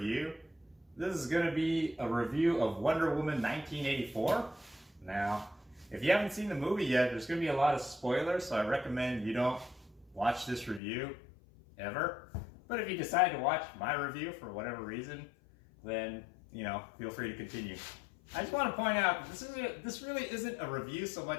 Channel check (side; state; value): right; drops out; at 10.8 s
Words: This is going to be a review of Wonder Woman 1984. Now, if you haven't seen the movie yet, there's going to be a lot of spoilers, so I recommend you don't watch this review ever. But if you decide to watch my review for whatever reason, then, feel free to continue. I just want to point out, this really isn't a review so